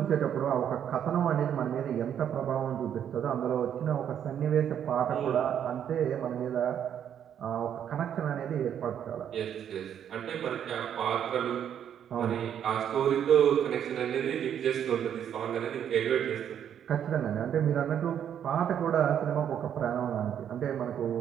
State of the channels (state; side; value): quieter; left; 9.2 dB